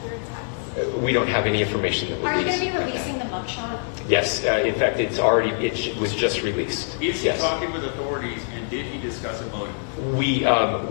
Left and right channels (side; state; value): right; silent; 62 dB below the other